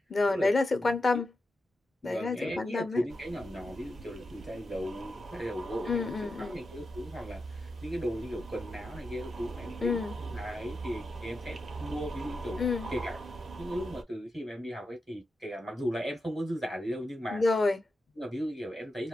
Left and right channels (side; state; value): both; normal; correlation 0.88